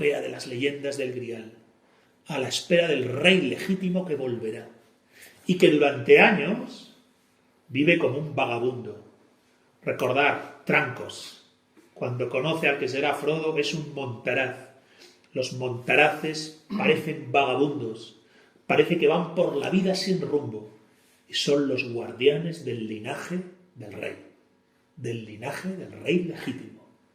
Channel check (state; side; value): identical; both; correlation 1.00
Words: de las leyendas del Grial, a la espera del rey legítimo que volverá y que durante años vive como un vagabundo. Recordar Trancos, cuando conoce al que será Frodo, es un montaraz. Los montaraces parecen vagabundos, parece que van por la vida sin rumbo y son los guardianes del linaje del rey legítimo,